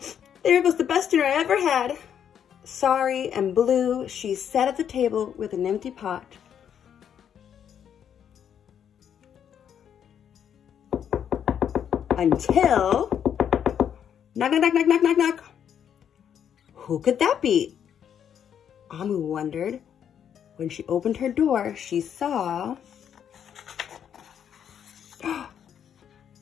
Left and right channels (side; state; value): right; quieter; 8.7 dB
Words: There goes the best dinner I ever had. Sorry and blue, she sat at the table with an empty pot. Until... Knock, knock, knock, knock, knock, knock, knock. Who could that be? Amu wondered. When she opened her door, she saw...